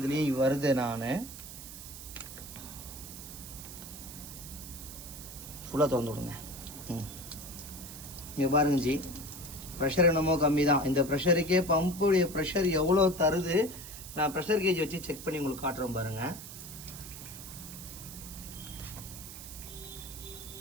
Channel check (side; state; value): right; noise; hiss, 12 dB below the sound